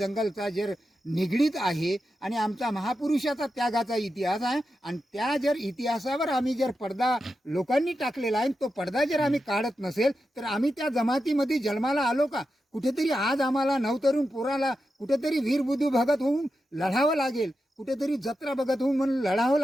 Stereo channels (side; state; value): both; normal; correlation 0.89